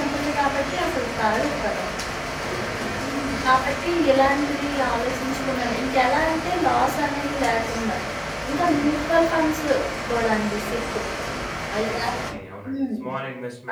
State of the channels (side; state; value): both; identical; correlation 1.00